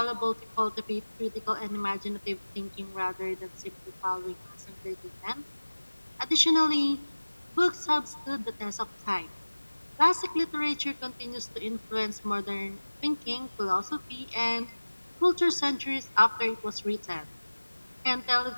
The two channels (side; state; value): both; inverted; correlation -1.00